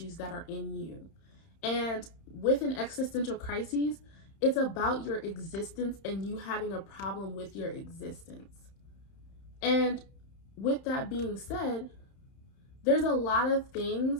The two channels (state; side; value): late; right; 31 ms